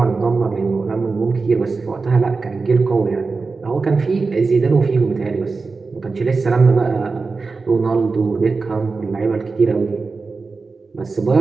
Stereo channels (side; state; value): left; quieter; 4.3 dB